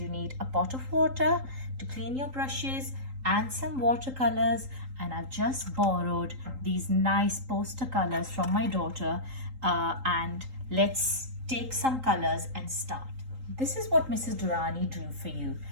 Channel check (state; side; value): late; left; 3.8 ms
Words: need a pot of water to clean your brushes and some watercolors. And I've just borrowed these nice poster colors from my daughter, and let's take some colors and start. This is what Mrs. Durrani drew for you.